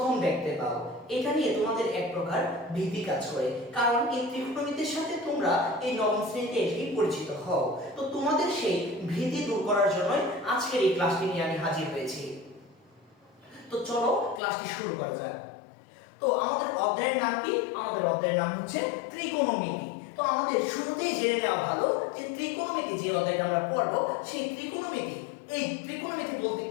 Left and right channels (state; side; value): drops out; right; at 14.4 s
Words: দেখতে পাও। এটা নিয়ে তোমাদের এক প্রকার ভীতি কাজ করে, কারণ এই ত্রিকোণমিতির সাথে তোমরা এই নবম শ্রেণীতে এসেই পরিচিত হও। তো তোমাদের সেই ভীতি দূর করার জন্যই আজকের এই ক্লাসটি নিয়ে আমি হাজির হয়েছি। তো চলো ক্লাসটি শুরু করা যাক। তো আমাদের অধ্যায়ের নাম কি? আমাদের অধ্যায়ের নাম হচ্ছে ত্রিকোণমিতি। তো আমাদের শুরুতেই জেনে নেওয়া ভালো যে ত্রিকোণমিতি যে অধ্যায়টা আমরা পড়ব, সেই ত্রিকোণমিতি, এই ত্রিকোণমিতি বলতে